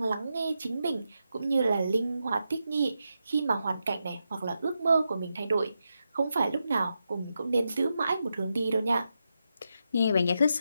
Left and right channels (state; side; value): inverted; both; correlation -0.87